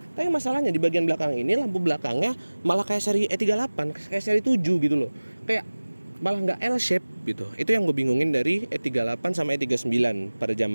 masalahnya di bagian belakang ini lampu belakangnya malah kayak seri E38, kayak seri 7 gitu loh. Kayak malah nggak L-shape gitu. Itu yang gue bingungin dari E38 sama E39 pada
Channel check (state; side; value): inverted; both; correlation -1.00